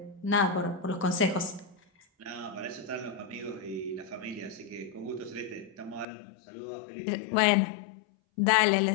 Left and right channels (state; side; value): drops out; right; at 6.1 s